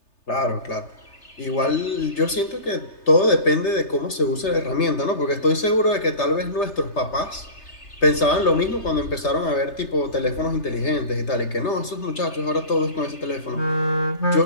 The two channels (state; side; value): late; right; 3.3 ms